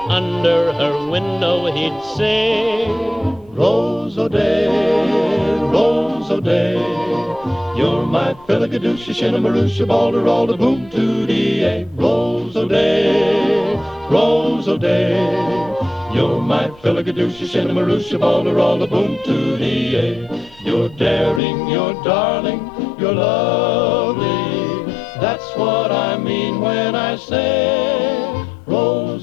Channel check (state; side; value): drops out; right; at 21.4 s